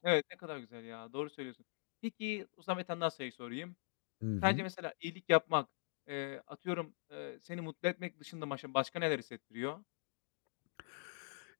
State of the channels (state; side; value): silent; right; digital silence